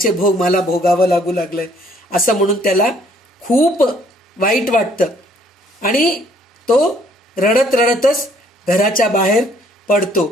भोग मला भोगावं लागू लागलंय असं म्हणून त्याला खूप वाईट वाटतं. आणि तो रडत रडतच घराच्या बाहेर पडतो.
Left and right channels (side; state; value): both; normal; correlation 0.63